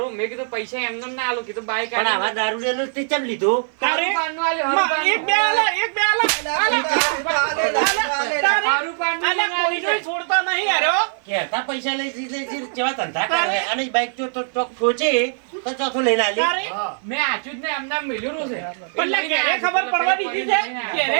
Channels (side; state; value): left; silent; 57 dB below the other